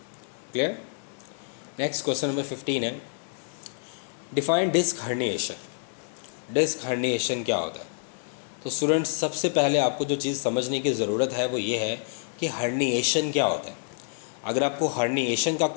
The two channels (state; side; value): silent; right; 58 dB below the other